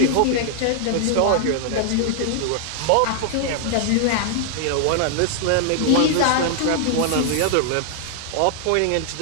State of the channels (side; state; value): both; different; correlation 0.00